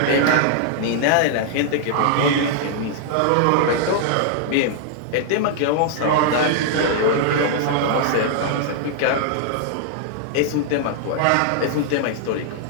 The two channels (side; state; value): both; different; correlation -0.01